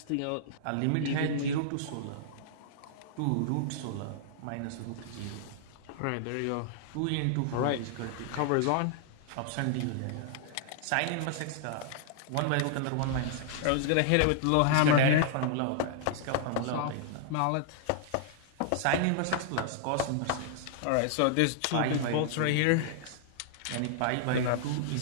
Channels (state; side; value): different; both; correlation -0.01